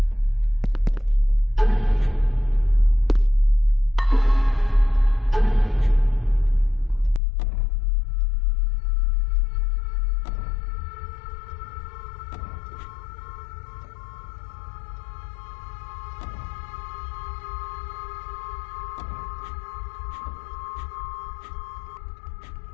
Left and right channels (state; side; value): drops out; right; at 7.2 s